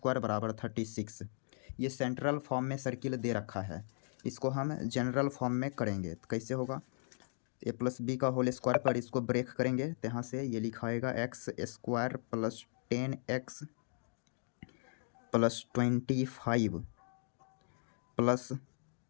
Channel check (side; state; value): right; silent; digital silence